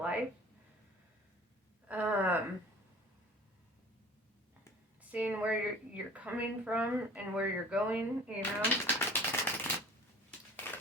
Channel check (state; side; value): normal; both; correlation 0.45